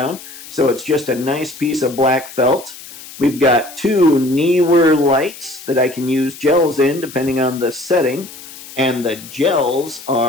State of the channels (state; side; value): noise; left; hiss, 16 dB below the sound